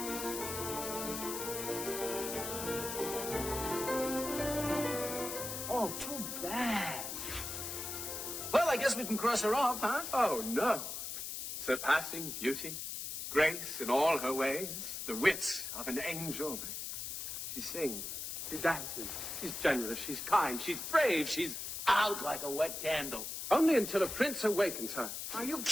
Oh, too bad. Well, I guess we can cross her off, huh? Oh, no. Surpassing beauty, grace in all her ways, the wit of an angel. She sings, she dances, she's generous, she's kind, she's brave, she's... Out like a wet candle. Only until a prince awakens her. Are you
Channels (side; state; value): left; noise; hiss, 5 dB below the sound